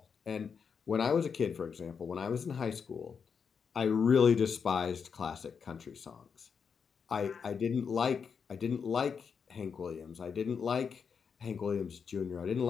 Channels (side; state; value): right; quieter; 6.3 dB